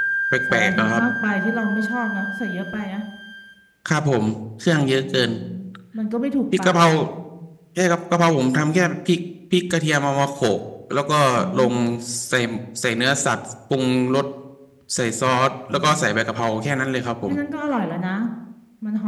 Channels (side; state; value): both; identical; correlation 1.00